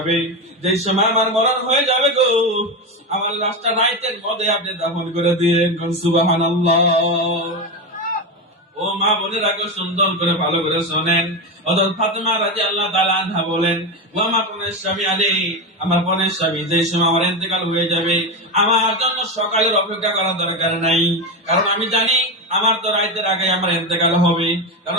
যে সময় আমার মরণ হয়ে যাবে গো, আমার লাশটা রাইতের মধ্যে আপনি দাফন করে দিয়েন। সুবহানাল্লাহ। ও মা বোনেরা গো, সুন্দর করে ভালো করে শোনেন। হযরত ফাতেমা রাদিয়াল্লাহু তাআলা আনহা বলেন, ও আমার প্রাণের স্বামী আলী, আমার প্রাণের স্বামী, যে সময় আমার ইন্তেকাল হয়ে যাবে, আমার জন্য সকালের অপেক্ষা করার দরকার নাই। কারণ আমি জানি আমার তো রাতের আগে আমার ইন্তেকাল হবে।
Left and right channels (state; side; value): normal; both; correlation 0.15